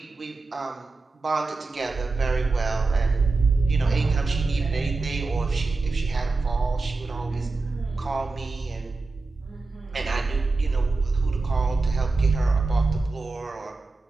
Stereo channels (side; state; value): left; quieter; 3.7 dB